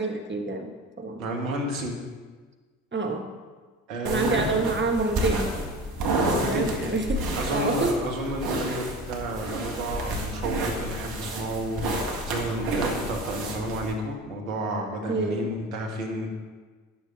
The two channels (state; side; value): normal; both; correlation 0.34